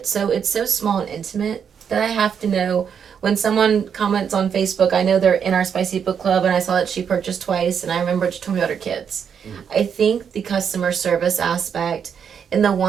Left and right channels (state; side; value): quieter; left; 7.4 dB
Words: So it's so small and intimate that I have to know when someone comments on Facebook, I know they're in our Spicy Book Club and I saw that she purchased twice and I remember she told me about her kids. I think the customer service aspect and the